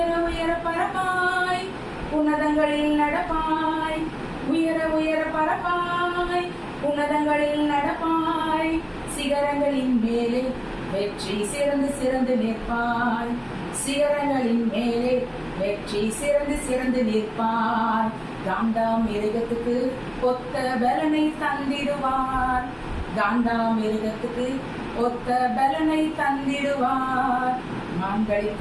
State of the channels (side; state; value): both; identical; correlation 1.00